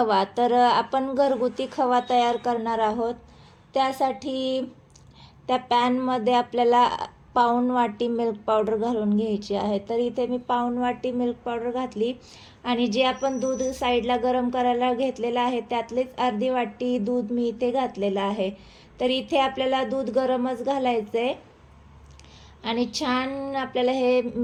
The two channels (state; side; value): identical; both; correlation 1.00